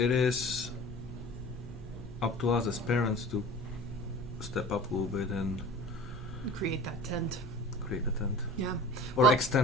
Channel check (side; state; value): both; normal; correlation 0.40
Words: up to us as parents to step up a little bit and Create that tent. create a tent. Yeah. Or Well-